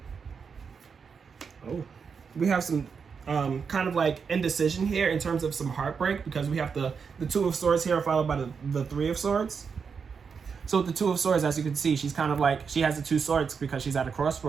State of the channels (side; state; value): left; quieter; 5.9 dB